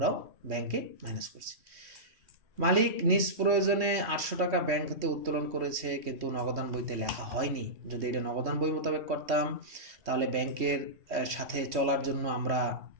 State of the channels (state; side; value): late; left; 3.1 ms